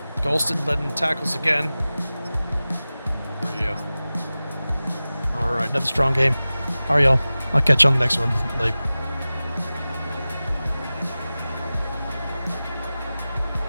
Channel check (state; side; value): inverted; both; correlation -0.97